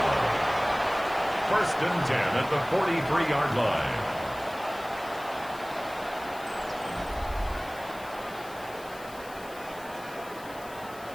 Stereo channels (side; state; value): left; noise; hiss, 20 dB below the sound